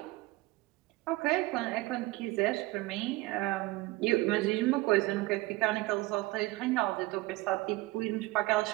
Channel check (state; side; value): quieter; left; 20.7 dB